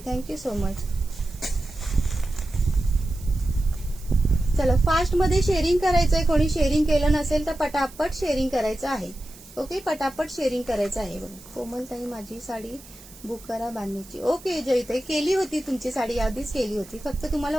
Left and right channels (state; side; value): noise; right; hiss, 20 dB below the sound